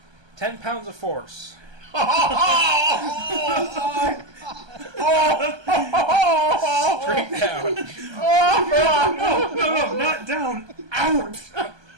10 pounds of force. Straight down. No, not down. Out.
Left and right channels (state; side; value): late; left; 1.2 ms